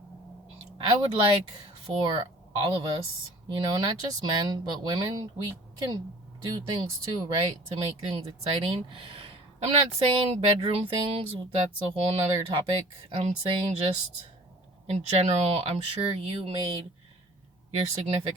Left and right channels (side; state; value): both; normal; correlation 0.47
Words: I would like for all of us, not just men, but women, we can do things too, right? To make things exciting. I'm not saying bedroom things, that's a whole nother topic. I'm saying just in general, I'm sure you made your